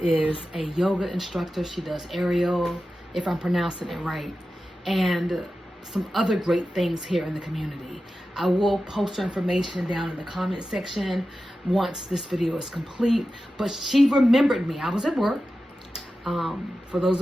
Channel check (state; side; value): normal; both; correlation 0.93